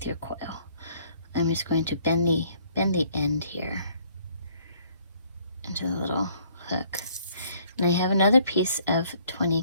your coil. I'm just going to bend the end here into the little hook. And I have another piece of 20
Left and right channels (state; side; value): inverted; both; correlation -0.62